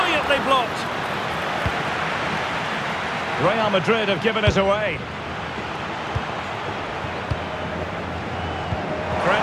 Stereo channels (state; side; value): identical; both; correlation 1.00